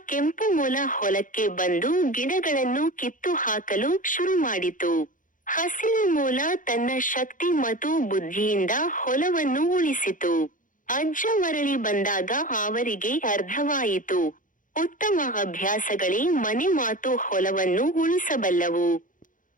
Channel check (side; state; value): right; late; 0.38 ms